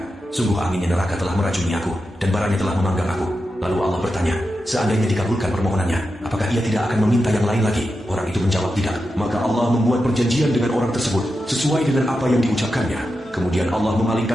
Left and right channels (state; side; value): normal; both; correlation 0.89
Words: Sungguh anginnya neraka telah meracuni aku, dan baranya telah memanggang aku." Lalu Allah bertanya, seandainya dikabulkan permohonannya, apakah ia tidak akan meminta yang lain lagi? Orang itu menjawab tidak. Maka Allah membuat perjanjian dengan orang tersebut, sesuai dengan apa yang diucapkannya. Kemudian Allah